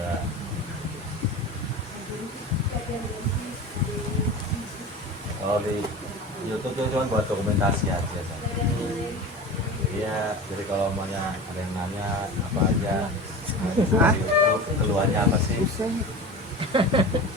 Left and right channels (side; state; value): both; normal; correlation 0.32